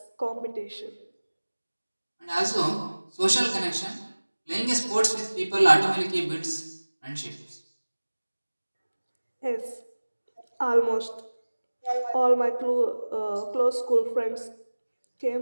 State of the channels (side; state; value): both; inverted; correlation -1.00